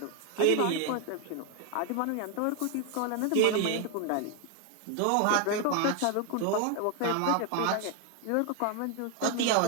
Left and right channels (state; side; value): different; both; correlation 0.01